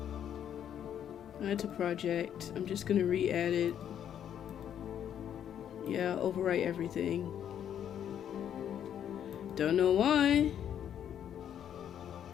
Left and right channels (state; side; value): quieter; right; 9.6 dB